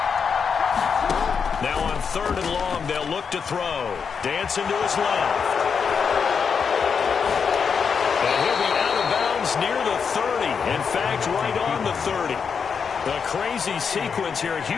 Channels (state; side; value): quieter; right; 6.2 dB